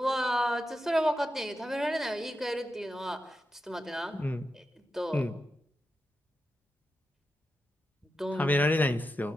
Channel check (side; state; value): both; normal; correlation 0.88